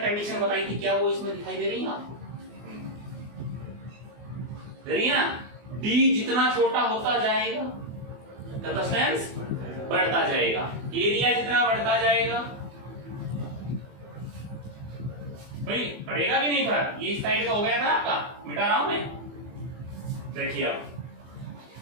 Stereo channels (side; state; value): left; late; 24 ms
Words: कंडीशन बताई थी क्या वो इसमें दिखाई दे रही है आपको, दे रही है ना, D जितना छोटा होता जाएगा कैपेसिटेंस बढ़ता जाएगा, एरिया जितना बढ़ता जाएगा भाई पड़ेगा कि नहीं फर्क, ये इस साइड का हो गया था आपका, मिटा रहा हूं मैं। देखिए